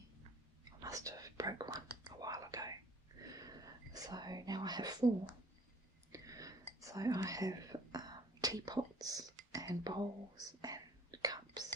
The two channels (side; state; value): both; normal; correlation 0.56